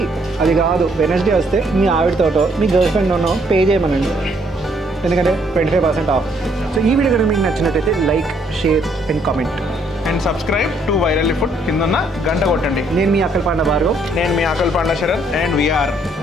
అది కాదు, వెనస్డే వస్తే మీ ఆవిడతోటో మీ గర్ల్ ఫ్రెండ్తోనో పే చేయమనండి, ఎందుకంటే 25% ఆఫ్. సో ఈ వీడియో కనుక మీకు నచ్చినట్టయితే like, share and comment and subscribe to Virally Food. కిందన్న గంట కొట్టండి. నేను మీ అక్కల్ పాండ భార్గవ్. నేను మీ ఆకల్ పాండా Sarath and we are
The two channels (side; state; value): both; normal; correlation 0.68